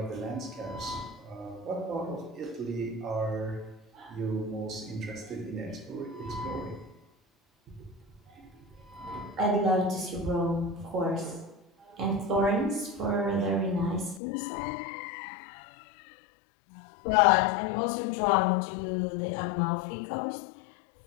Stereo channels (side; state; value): right; drops out; at 14.2 s